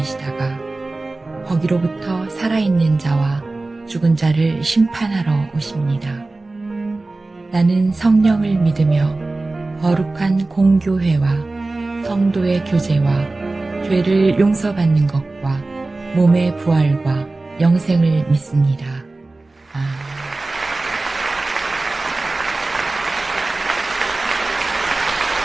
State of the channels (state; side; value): quieter; left; 3.2 dB